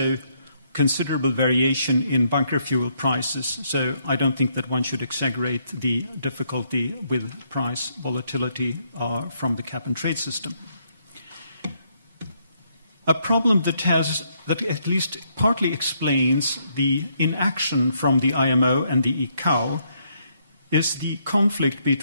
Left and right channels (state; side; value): inverted; both; correlation -0.73